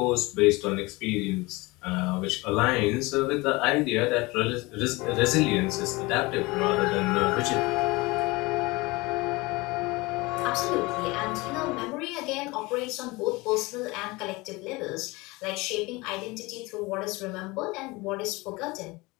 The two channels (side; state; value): right; quieter; 23.2 dB